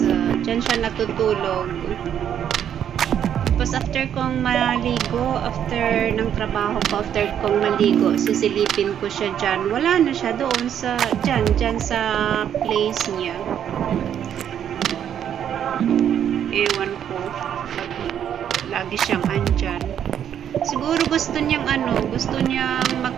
dyan siya natutulog. Tapos after kong maligo, after ng trabaho ko, after kong maligo, sisilipin ko siya dyan. Wala na siya doon sa, dyan sa place niya. Ewan ko. Lagi siyang andyan. Siguro gusto niyang gusto niyang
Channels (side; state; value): left; quieter; 9.4 dB